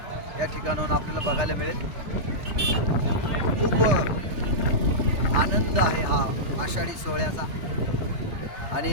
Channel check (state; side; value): late; left; 3.4 ms